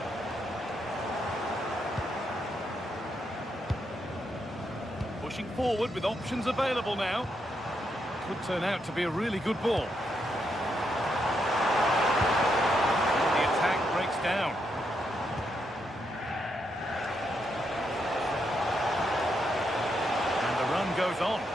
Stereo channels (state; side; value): normal; both; correlation 0.80